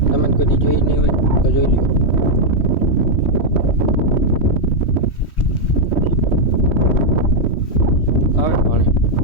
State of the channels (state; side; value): late; right; 3.1 ms